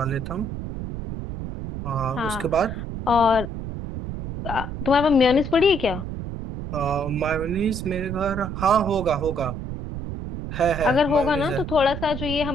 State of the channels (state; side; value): noise; right; rumble, 7 dB below the sound